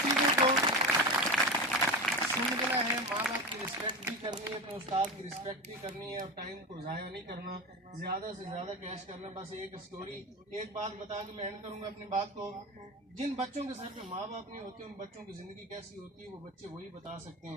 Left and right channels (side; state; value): both; normal; correlation 0.24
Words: چیزوں کو سمجھنا ہے، ماں باپ کی رسپیکٹ بھی کرنی ہے، اپنے استاد کی رسپیکٹ بھی کرنی ہے، اور ٹائم کو ضائع نہیں کرنا، زیادہ سے زیادہ کیش کرنا۔ بس ایک سٹوری ایک بات بتا کے میں اینڈ کروں گا اپنی بات کو، جن بچوں کے سر پہ ماں باپ نہیں ہوتے ان بچوں کی زندگی کیسی ہوتی ہے وہ بچے وہی بتا سکتے